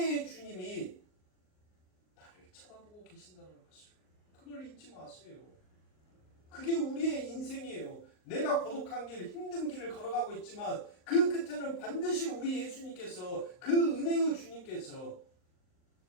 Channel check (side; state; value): right; late; 38 ms